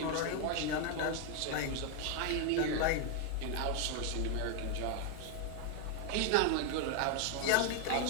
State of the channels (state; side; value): different; both; correlation 0.01